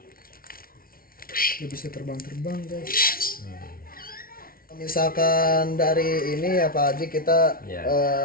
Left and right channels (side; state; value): right; late; 0.43 ms